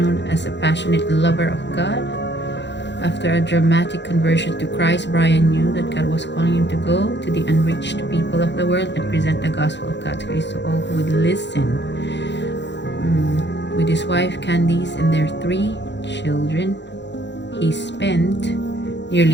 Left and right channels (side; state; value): right; late; 0.52 ms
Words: as a passionate lover of God. After a dramatic conversion to Christ, Brian knew that God was calling him to go to the unreached people of the world and present the gospel of God's grace to all who would listen. With his wife Candice and their 3 children, he spent